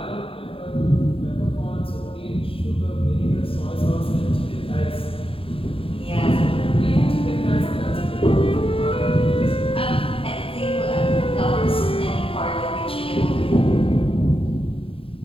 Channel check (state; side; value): late; right; 0.27 ms